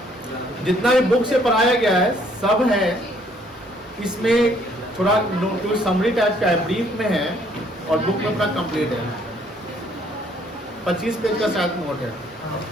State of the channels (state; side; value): normal; both; correlation 0.64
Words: जितना भी बुक से पढ़ाया गया है सब है इसमें। थोड़ा नोट समरी टाइप का है, ब्रीफ में है, और बुक में अपना कंप्लीट है। 25 पेज का शायद नोट है।